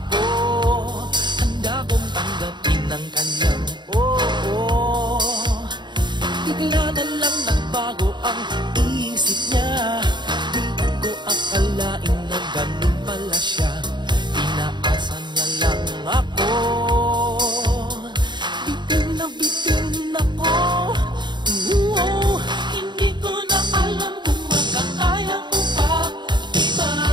handa kong tanggapin ang kanyang oo. Bigla na lang nagbago ang isip niya. Di ko akalain na ganun pala siya. Pinaasa niya lang ako. Bitin ako. Hindi ko na alam kung makakaya ko pa. Di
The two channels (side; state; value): left; late; 0.22 ms